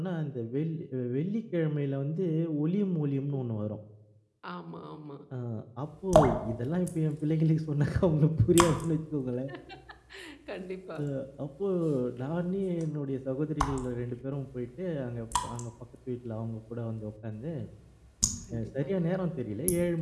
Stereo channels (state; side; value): identical; both; correlation 1.00